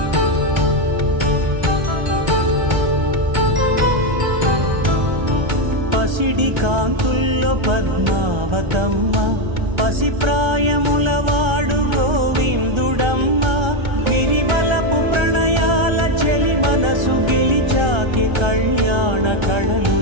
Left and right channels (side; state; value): left; late; 1.3 ms